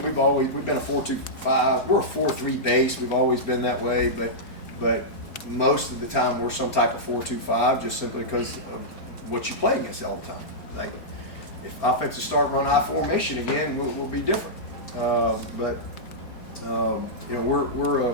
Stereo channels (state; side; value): late; right; 4.4 ms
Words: We've been a 4-2-5. We're a 4-3 base. We've always been that way, but most of the time we're some type of 4-2-5 just simply because of what you play against all the time. Like, if offensive start run I formation again, we'll be different. You know, we're